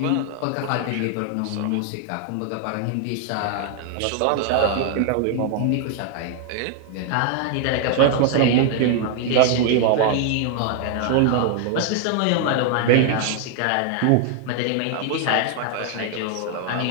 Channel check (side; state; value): both; different; correlation 0.00